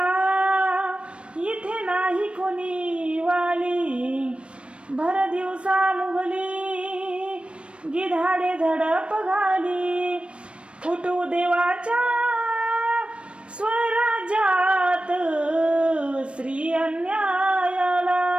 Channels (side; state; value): left; late; 0.059 ms